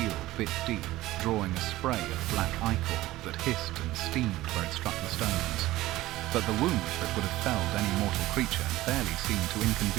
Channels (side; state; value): left; quieter; 16.9 dB